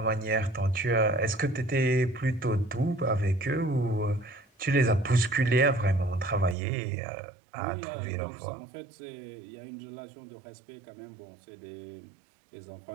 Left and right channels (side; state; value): left; drops out; at 6.6 s